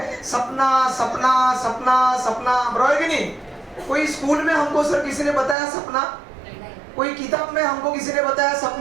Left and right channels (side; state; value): left; drops out; at 5.6 s